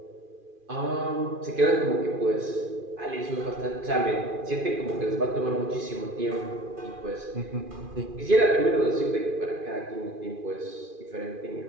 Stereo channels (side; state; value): left; late; 2.4 ms